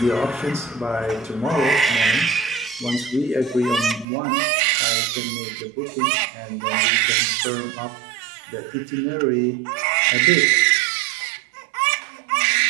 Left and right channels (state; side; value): drops out; left; at 4.0 s